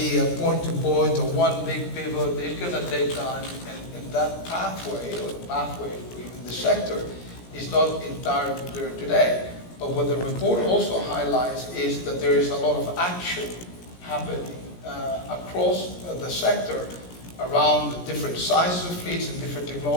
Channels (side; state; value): right; late; 17 ms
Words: a point-to-point or one big pivot. It's going to take time, and that pathway, or the pathway in the sector, is not entirely clear today. But what the report also highlights is that there is a lot of action happening across the sector around different sizes of fleets and different